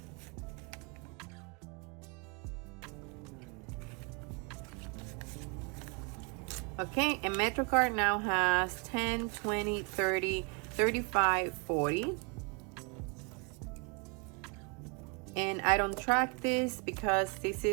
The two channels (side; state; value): left; quieter; 34.7 dB